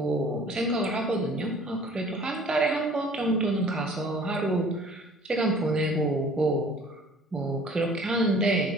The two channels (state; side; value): normal; both; correlation 0.51